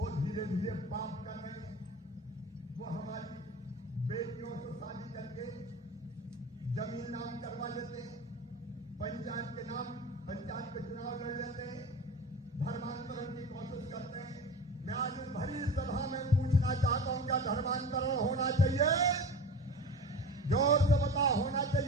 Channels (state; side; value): normal; both; correlation 0.34